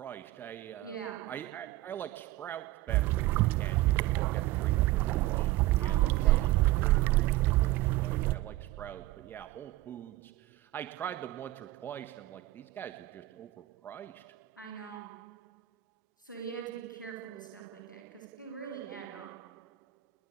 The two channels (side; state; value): left; quieter; 17.0 dB